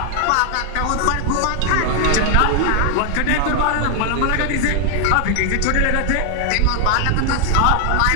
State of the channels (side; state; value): both; different; correlation 0.00